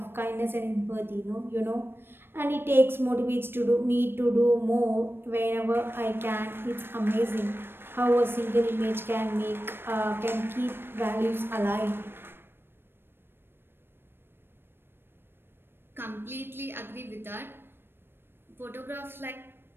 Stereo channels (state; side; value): late; left; 0.10 ms